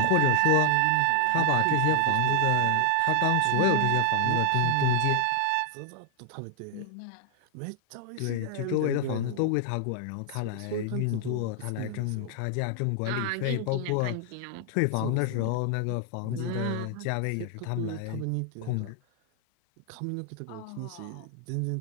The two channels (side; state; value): both; different; correlation 0.00